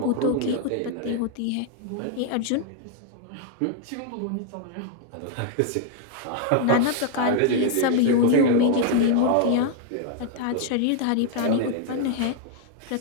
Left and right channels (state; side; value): different; both; correlation 0.00